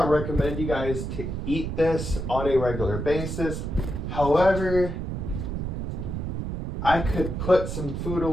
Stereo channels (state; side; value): noise; right; rumble, 4 dB below the sound